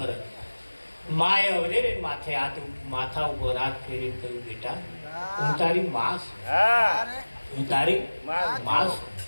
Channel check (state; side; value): inverted; both; correlation -1.00